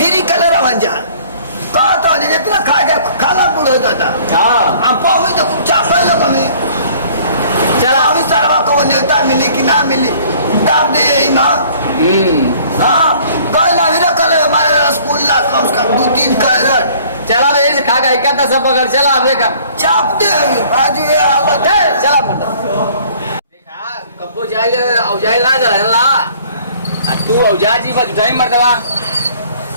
फिरी कलर रवन जा कहा तो जितना खा के खाला बुढ़ो दादा हाँ हम पावी तो कुछ चापल लोग हमें चला अभी सारा को नेता मिली कि ना मिली दाब दे यही माँ हाँ कल अभी ना कल हमारे रसगुल्ला कम से कम 2-3 कैरेट चला रे इसे खा के इकट्ठा सब पकड़ चला अब देखा चापते हैं आज ये हालत है चला पड़ता देखा कब्बो जाए औजाई ना जला ला तू औजा जी बस उठाई मरदवा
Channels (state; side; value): inverted; both; correlation -0.55